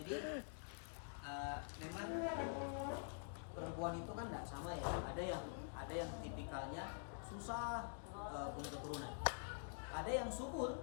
memang perempuan itu kan nggak sama ya. Ada yang tipikalnya susah punya keturunan. Ada yang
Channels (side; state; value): right; silent; digital silence